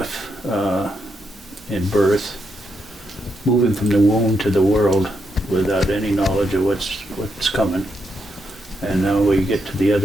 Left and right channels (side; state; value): both; normal; correlation 0.81